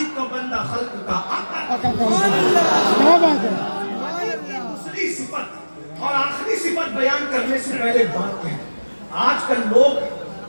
का बंदा खल्क का आका। दूसरी सिफत और आखिरी सिफत बयान करने से पहले बात है, आजकल लोग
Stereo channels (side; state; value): both; inverted; correlation -1.00